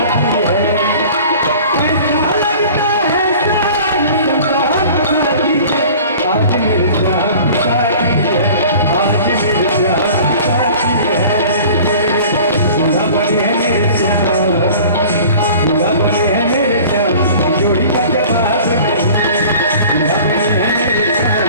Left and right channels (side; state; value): both; inverted; correlation -0.44